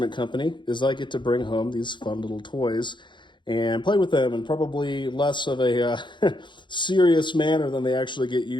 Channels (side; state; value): right; late; 0.23 ms